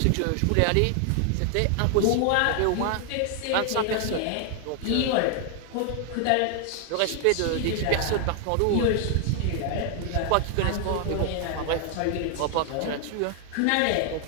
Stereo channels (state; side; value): different; both; correlation 0.00